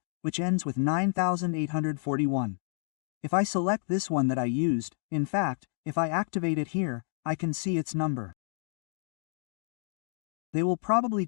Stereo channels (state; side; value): silent; right; digital silence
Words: which ends with 9841. If I select this one that I used, in fact, if I activate it here, I can see its number. They will probably